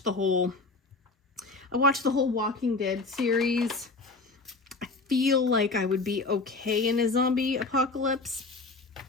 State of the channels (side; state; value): right; quieter; 3.6 dB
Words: the whole Walking Dead series. I feel like I would be okay in a zombie apocalypse.